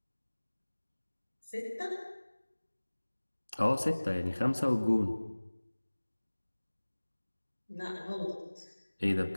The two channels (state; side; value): inverted; both; correlation -1.00